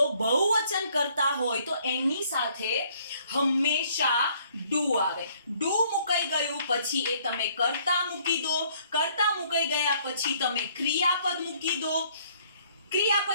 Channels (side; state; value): both; inverted; correlation -0.63